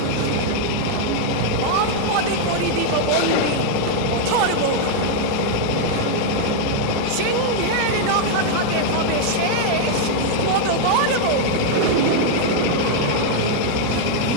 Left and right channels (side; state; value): both; different; correlation 0.00